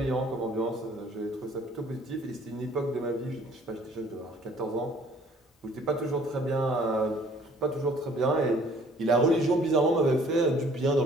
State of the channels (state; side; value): normal; both; correlation 0.56